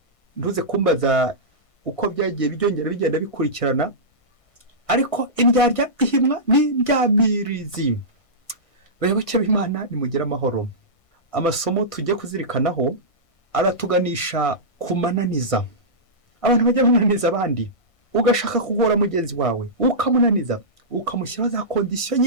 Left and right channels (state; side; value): late; right; 1.6 ms